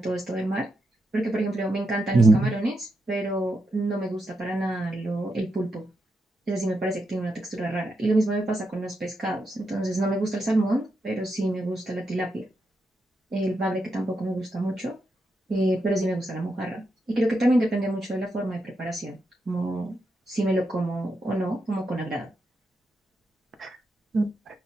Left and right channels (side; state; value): both; normal; correlation 0.84